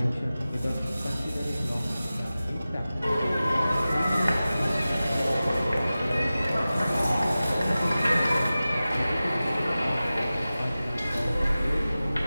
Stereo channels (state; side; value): inverted; both; correlation -0.96